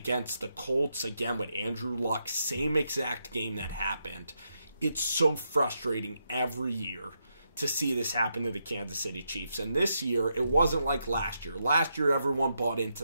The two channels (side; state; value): both; inverted; correlation -0.82